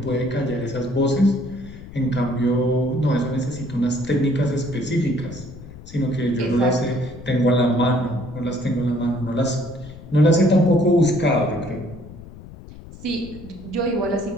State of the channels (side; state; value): left; noise; rumble, 16 dB below the sound